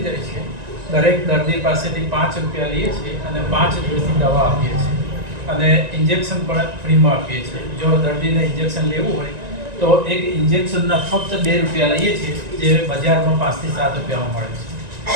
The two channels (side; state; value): left; late; 1.9 ms